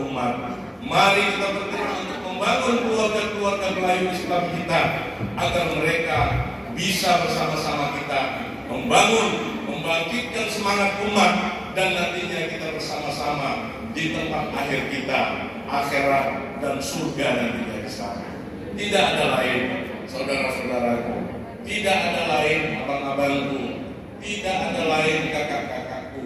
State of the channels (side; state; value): both; identical; correlation 1.00